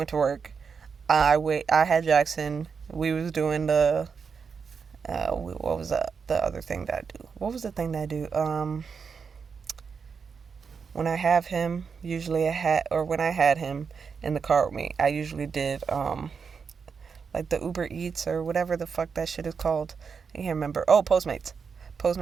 to work. I had Jackson. We was doing the what was the other thing that I do? What was the thing that I do? When I have him, when I had him in the car with me, I usually did like the Uber Eats or whatever the fuck that shit is called. I can't remember. Oh, Postmates.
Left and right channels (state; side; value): quieter; left; 5.9 dB